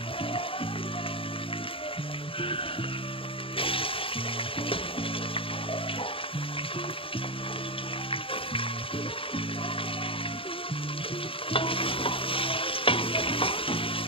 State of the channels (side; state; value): right; late; 0.26 ms